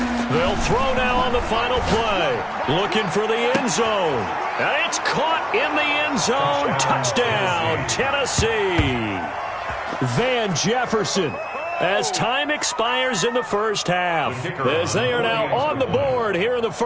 They'll throw now on the final play. Looking for the end zone. And it's caught in the end zone. Touchdown, Tennessee. Van Jefferson. As time expires in the first half, as they are now on the board here in the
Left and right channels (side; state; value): both; identical; correlation 1.00